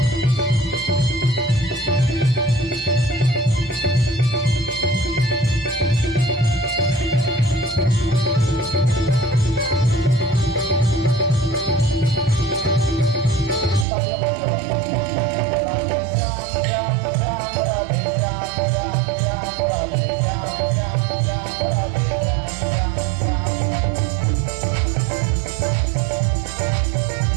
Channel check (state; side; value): drops out; left; at 13.9 s